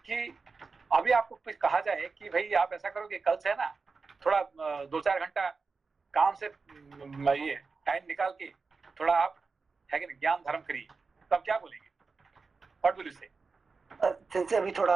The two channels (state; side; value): quieter; left; 4.5 dB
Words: कि अभी आपको कुछ कहा जाए कि भाई आप ऐसा करो कि कल से है ना थोड़ा 2-4 घंटा काम से ये टाइम निकाल के थोड़ा आप, है कि नहीं, ज्ञान धर्म करिए, तब क्या बोलेंगे? व्हाट विल यू से? सेंसे अभी